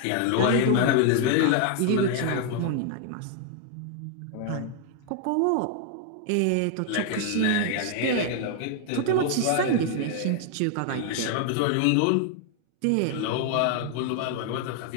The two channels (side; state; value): both; different; correlation 0.00